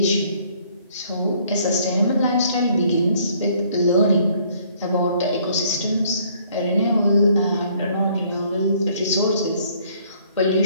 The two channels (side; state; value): both; inverted; correlation -0.62